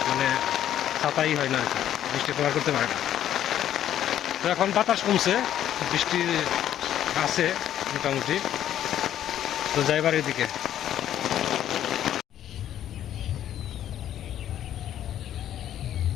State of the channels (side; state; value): right; quieter; 11.2 dB